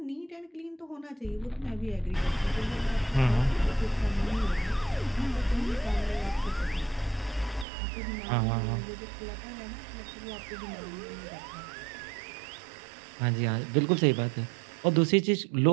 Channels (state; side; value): drops out; left; at 7.7 s